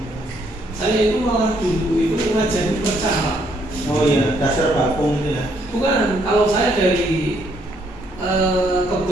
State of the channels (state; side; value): normal; both; correlation 0.70